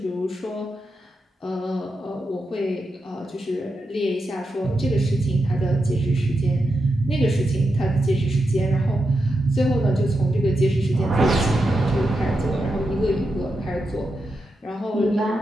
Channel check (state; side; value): normal; both; correlation 0.87